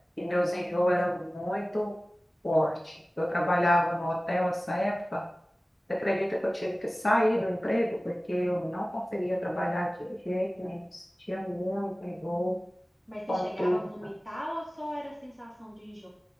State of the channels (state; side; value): normal; both; correlation 0.97